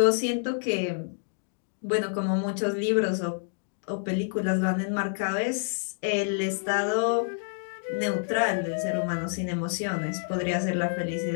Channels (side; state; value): right; silent; digital silence